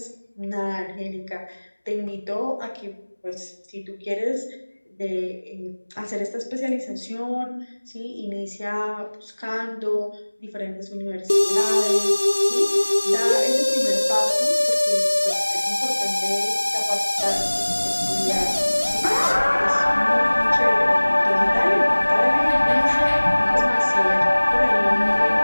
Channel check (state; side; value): inverted; both; correlation -1.00